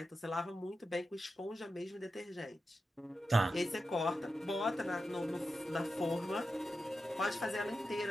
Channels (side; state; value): both; normal; correlation 0.90